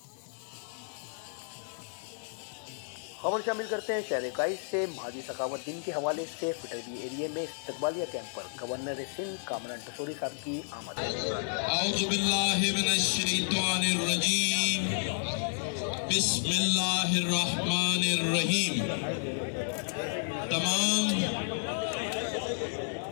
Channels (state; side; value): silent; right; digital silence